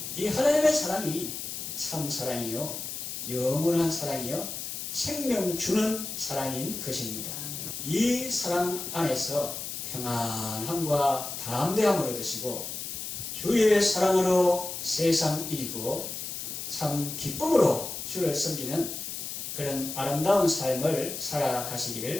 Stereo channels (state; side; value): noise; left; hiss, 6 dB below the sound